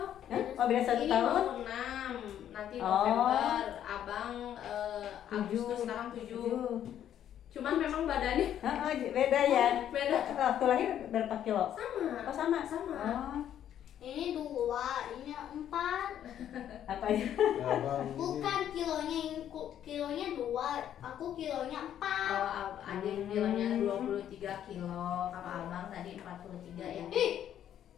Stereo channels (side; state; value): right; quieter; 10.5 dB